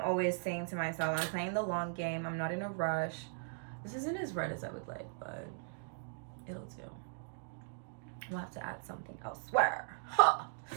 saying to myself, I'm playing the long game. I'm not in a rush. This isn't as red as I would like, but it'll do. We'll have to add something elsewhere. Huh.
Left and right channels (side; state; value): left; silent; digital silence